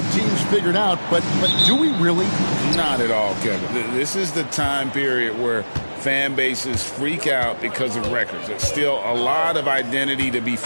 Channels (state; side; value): inverted; both; correlation -1.00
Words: teams figured out, but do we really? Not at all, Kevin. This is the time period where fan bases freak out because of records. There's still a lot of identity to be